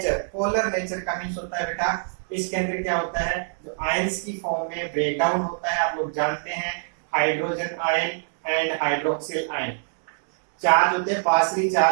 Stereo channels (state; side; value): silent; left; digital silence